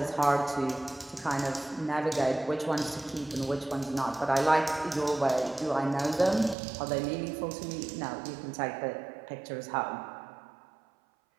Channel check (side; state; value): left; drops out; at 6.6 s